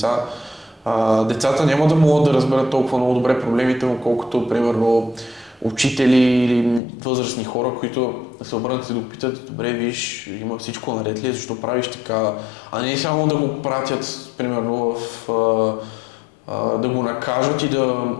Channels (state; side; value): drops out; right; at 6.8 s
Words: децата няма да могат да разберат толкова много добре проблемите му, колкото, примерно, учители или възрастни хора, които се обърнат и да го питат: добре, виж, има всичко наред ли, защо правиш така, а не само да го пратят, примерно, да го накажат и да